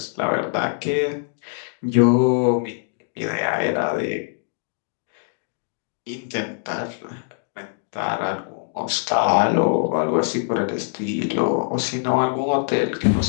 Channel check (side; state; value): right; silent; digital silence